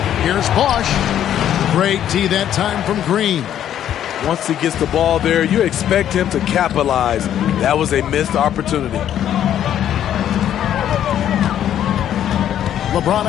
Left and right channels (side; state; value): right; quieter; 10.6 dB